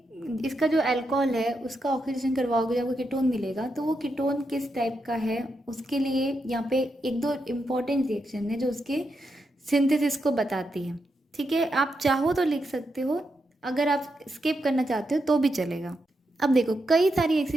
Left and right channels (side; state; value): both; normal; correlation 0.84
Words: इसका जो अल्कोहल है उसका ऑक्सीडेशन करवाओगे, जब वो कीटोन मिलेगा तो वो कीटोन किस टाइप का है उसके लिए यहाँ पे एक दो इम्पॉर्टेंट रिएक्शन है जो उसके सिंथेसिस को बताती है. ठीक है, आप चाहो तो लिख सकते हो, अगर आप स्किप करना चाहते हो तो भी चलेगा. अब देखो, कई सारी ऐसी